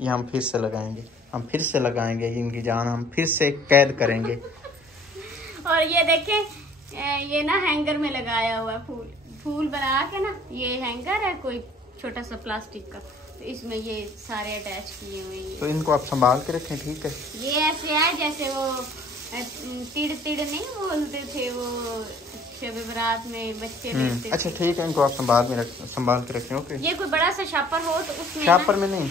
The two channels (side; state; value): both; normal; correlation 0.54